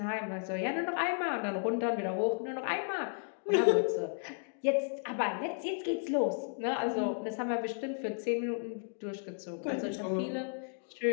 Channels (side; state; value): right; silent; 55 dB below the other